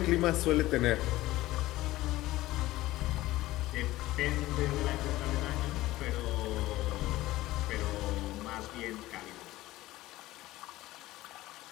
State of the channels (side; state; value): right; quieter; 17.1 dB